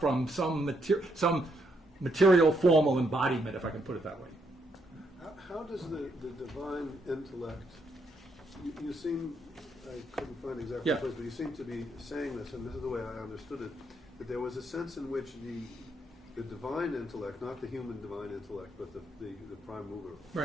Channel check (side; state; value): both; normal; correlation 0.76